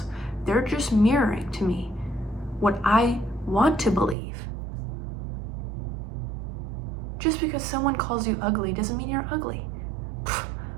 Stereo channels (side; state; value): left; drops out; at 4.2 s